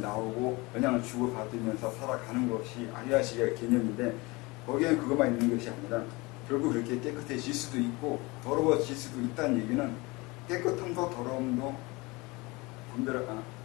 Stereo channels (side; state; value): right; quieter; 24.3 dB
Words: 영향을 주고받으면서 살아가는 것이 아리아식의 개념인데, 거기에는 그것만 있는 것이 아니라 결국 그렇게 깨끗해질 수도 있고 더러워질 수도 있다는 얘기는, 깨끗함도 더러움도